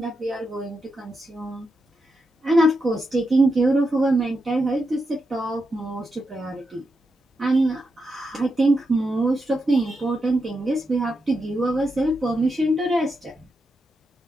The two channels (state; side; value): normal; both; correlation 0.85